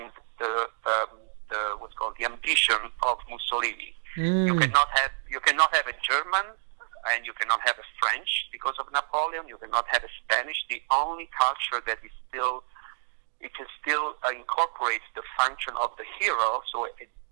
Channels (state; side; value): silent; left; digital silence